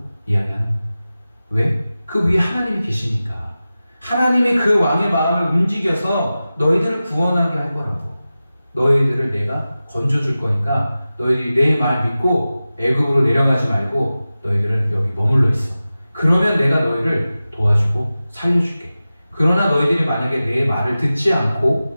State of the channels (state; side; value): inverted; both; correlation -0.95